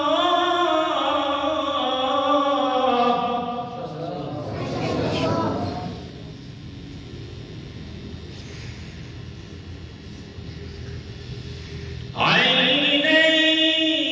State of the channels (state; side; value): identical; both; correlation 1.00